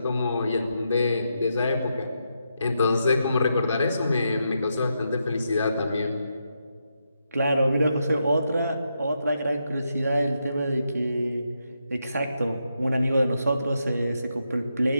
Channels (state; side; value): inverted; both; correlation -0.83